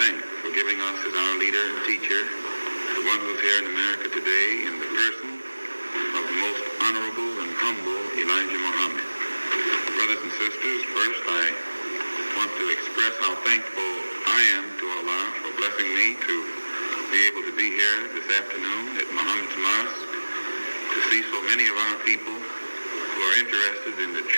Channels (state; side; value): inverted; both; correlation -1.00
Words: for giving us as our leader and teacher, the one who's here in America today in the person of the most honorable and humble Elijah Muhammad. Brothers and sisters, first I want to express how thankful I am to Allah for blessing me to be able to be here this afternoon at Muhammad's Mosque to see so many of our people who are interested in the